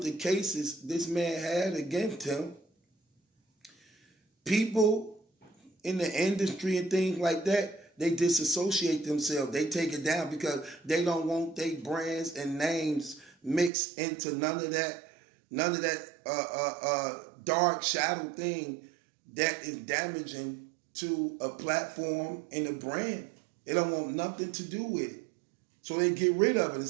the cases this man had against him, people in the industry and things like that, they disassociate themselves. They take it down because they don't want their brands and names mixed into none of that dark shadow thing that is damaging to a platform and a brand. They don't want nothing to do with it. So they get rid of it and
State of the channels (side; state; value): left; drops out; at 13.7 s